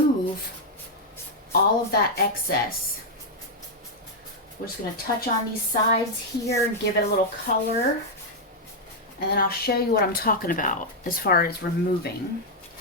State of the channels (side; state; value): both; normal; correlation -0.02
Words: all of that excess. We're just going to touch on these sides here and give it a little color. And then I'll show you what I'm talking about as far as removing.